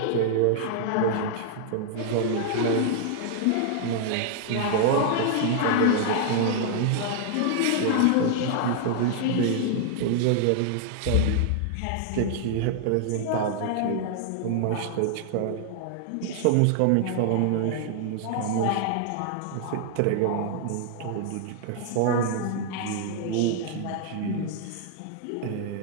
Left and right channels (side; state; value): both; different; correlation 0.00